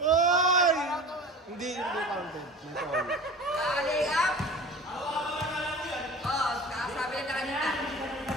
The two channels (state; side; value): normal; both; correlation 0.38